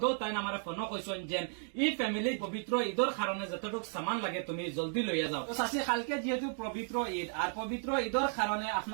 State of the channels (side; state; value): left; silent; 55 dB below the other